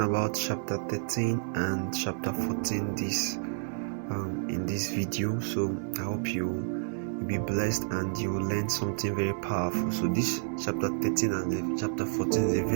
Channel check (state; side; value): silent; left; digital silence